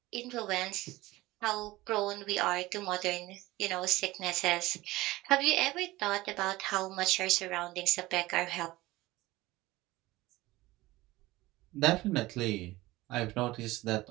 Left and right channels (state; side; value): quieter; left; 18.9 dB